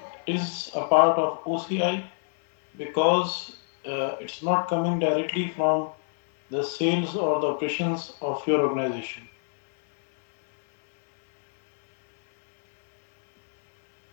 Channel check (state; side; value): silent; right; digital silence